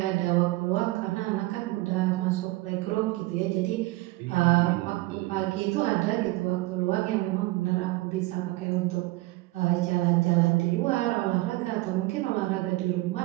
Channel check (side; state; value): left; quieter; 20.0 dB